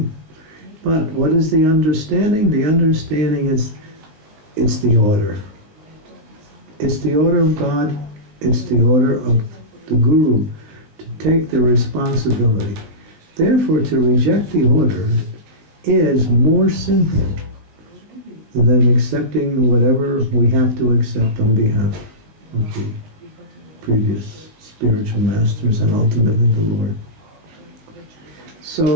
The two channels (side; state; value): left; late; 19 ms